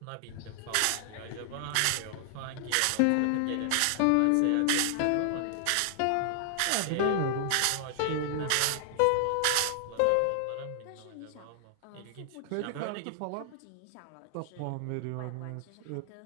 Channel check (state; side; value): different; both; correlation 0.00